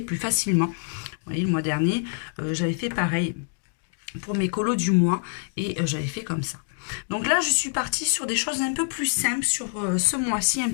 plus facilement. Vous voyez, le mois dernier j'avais fait pareil pour mes colos du mois et j'avais fait comme ça. Donc là, je suis partie sur des choses un peu plus simples sur ce mois-ci, un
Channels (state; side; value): silent; right; digital silence